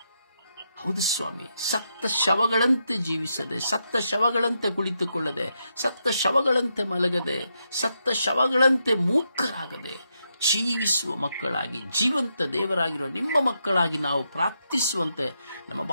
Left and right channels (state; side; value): inverted; both; correlation -0.82